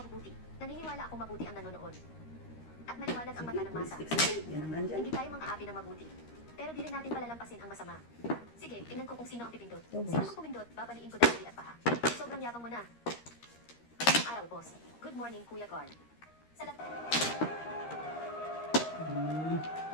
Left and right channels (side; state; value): right; late; 13 ms